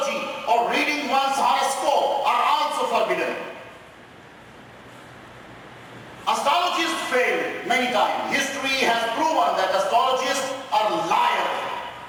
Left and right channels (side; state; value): both; identical; correlation 1.00